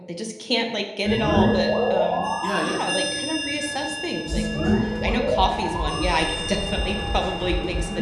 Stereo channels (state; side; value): identical; both; correlation 1.00